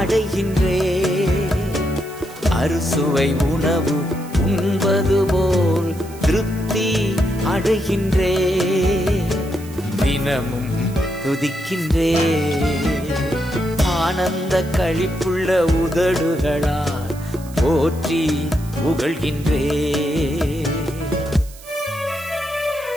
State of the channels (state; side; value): noise; right; hiss, 20 dB below the sound